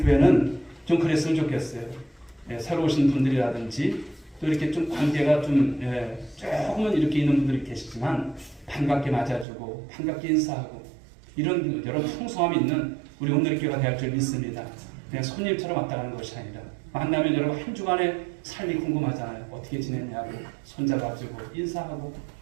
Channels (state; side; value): drops out; left; at 9.5 s